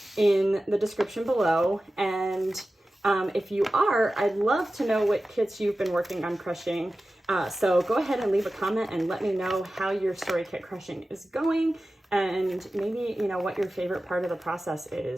in the description below. And if you are, I'd love to know what kits you've been working on crushing. So go ahead and leave a comment and let me know how your story kit crushing is going, and maybe, what your favorite part of the process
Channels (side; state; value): both; normal; correlation 0.95